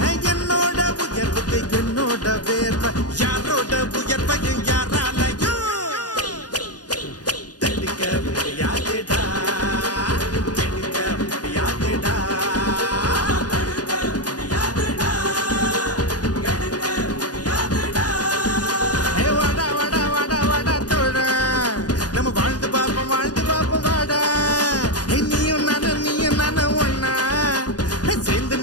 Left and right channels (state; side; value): late; right; 0.68 ms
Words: என்னோட உயர்வுக்கு என்னோட வேர்வை யாரோட உயர்வையும் யாராலையும் தடுக்க முடியாதுடா தடுக்க முடியாதுடா